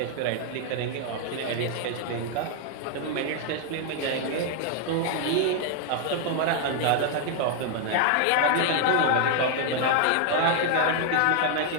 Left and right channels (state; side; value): different; both; correlation 0.00